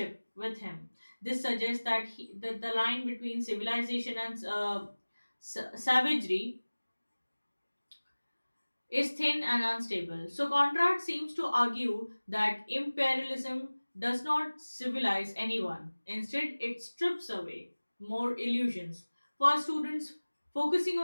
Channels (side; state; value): both; inverted; correlation -1.00